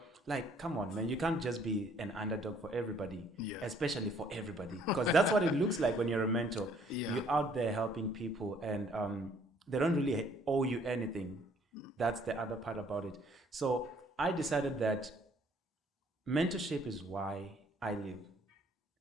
Like, come on, man! You can't just be an underdog for everybody, especially for everybody, because that's what it looks like when you're a mentor. Yeah. You're out there helping people, and they don't really owe you anything. That's the other part about it. So I decided that mentorship is why I live.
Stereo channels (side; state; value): both; normal; correlation 0.61